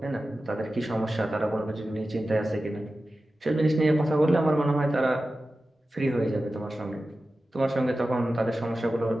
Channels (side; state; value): both; normal; correlation 0.94